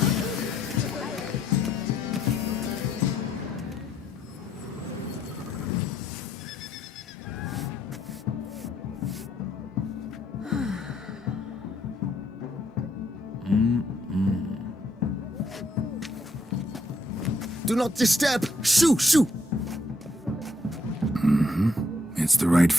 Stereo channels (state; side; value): normal; both; correlation 0.71